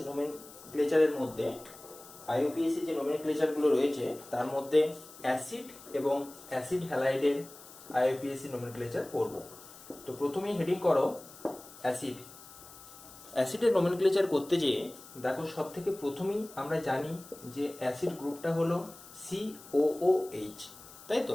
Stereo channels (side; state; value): left; noise; hiss, 19 dB below the sound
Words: নোমেনক্লেচারের মধ্যে আইইউপিএসি যে নোমেনক্লেচারগুলো রয়েছে তার মধ্যে অ্যাসিড এবং অ্যাসিড হ্যালাইডের আইইউপিএসি নোমেনক্লেচার পড়ব। তো প্রথমেই হেডিং করো অ্যাসিড। অ্যাসিডের নোমেনক্লেচার করতে যেয়ে দেখো সব থেকে প্রথমেই আমরা জানি যে অ্যাসিড গ্রুপটা হলো COOH, তাই